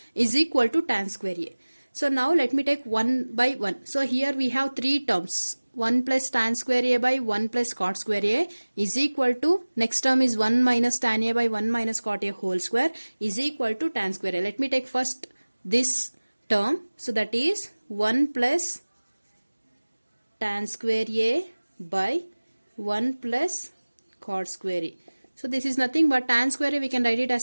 is equal to tan square A. So now let me take 1 by 1. So here we have three terms. 1 plus tan square A by 1 plus cot square A is equal to, next term is 1 minus tan A by 1 minus cot A whole square is equal to tan square A. Let me take first this term. So that is 1 plus tan square A by 1 plus cot square A. So this is nothing but tan square A, we can write it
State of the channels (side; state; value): both; inverted; correlation -1.00